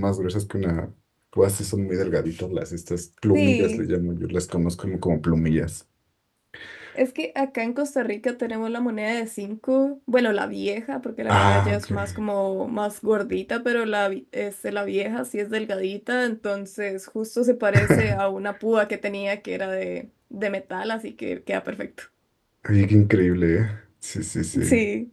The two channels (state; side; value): identical; both; correlation 1.00